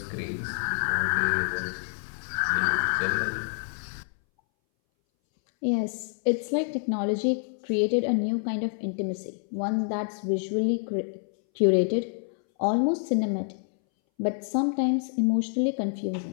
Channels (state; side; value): silent; right; 60 dB below the other